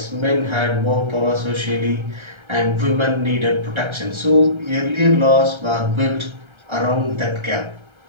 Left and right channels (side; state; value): left; late; 1.3 ms